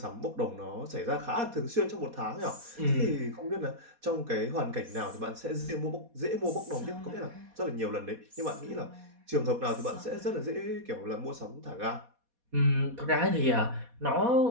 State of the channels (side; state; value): left; late; 4.2 ms